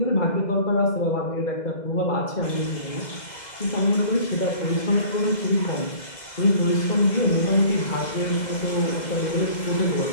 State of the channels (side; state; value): right; late; 2.0 ms